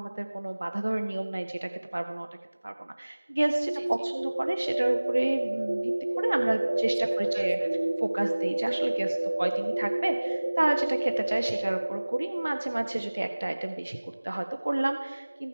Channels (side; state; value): both; inverted; correlation -1.00